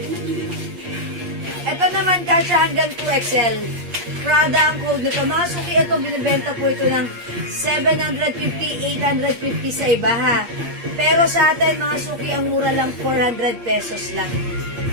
Ito naman, kasya hanggang 2XL. Prada ang code nito. Mga suki, ito, binibenta po ito ng 750, 850 sa iba, ha? Pero sa atin, mga suki, ang mura lang 400 pesos lang.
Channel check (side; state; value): left; late; 8.5 ms